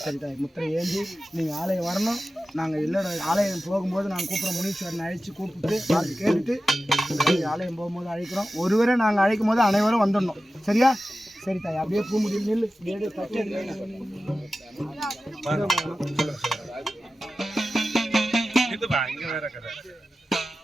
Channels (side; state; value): both; normal; correlation 0.94